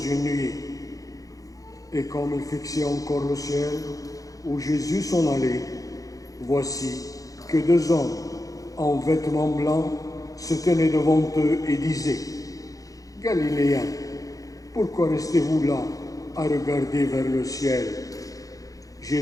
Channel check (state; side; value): late; right; 0.17 ms